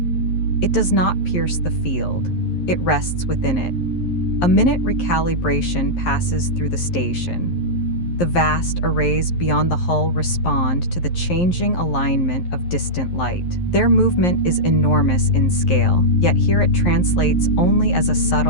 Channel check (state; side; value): late; right; 11 ms